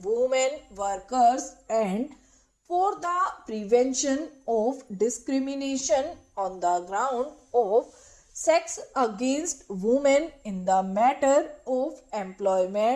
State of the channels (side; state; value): both; identical; correlation 1.00